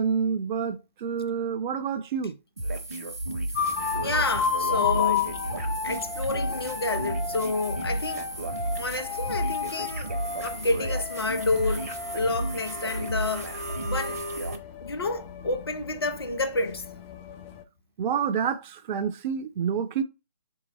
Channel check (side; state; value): both; inverted; correlation -0.39